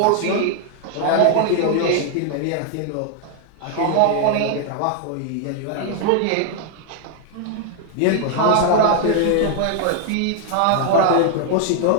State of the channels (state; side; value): different; both; correlation 0.00